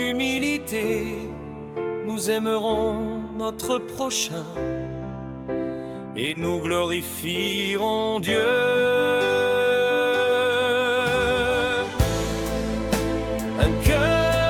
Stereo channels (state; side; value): identical; both; correlation 1.00